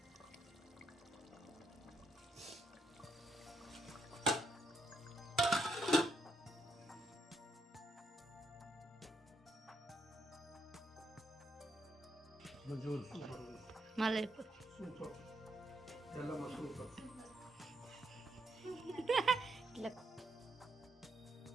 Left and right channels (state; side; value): normal; both; correlation 0.77